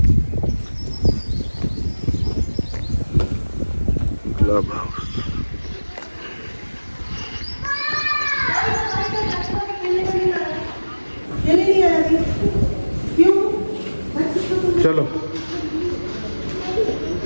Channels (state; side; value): inverted; both; correlation -1.00